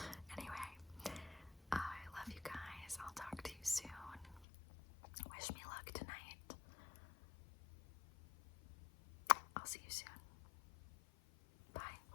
Anyway, I love you guys. I'll talk to you soon. Wish me luck tonight. I'll see you soon.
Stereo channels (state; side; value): drops out; right; at 4.5 s